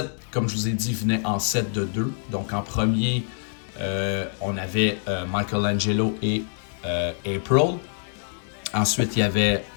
comme je vous ai dit, venaient en set de 2. Donc, en premier, on avait Michelangelo et April. Ensuite, il y avait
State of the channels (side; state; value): right; silent; 62 dB below the other